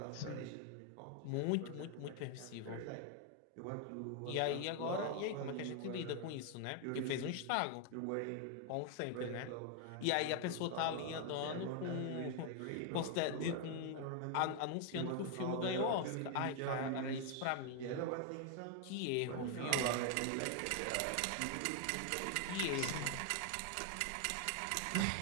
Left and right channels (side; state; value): both; different; correlation 0.00